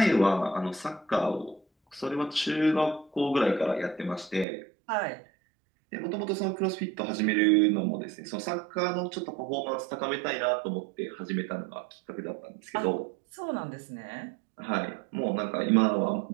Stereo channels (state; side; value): drops out; left; at 4.5 s